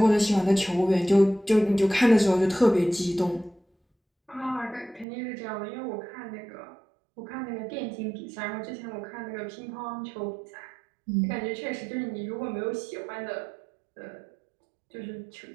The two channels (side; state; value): left; drops out; at 5.1 s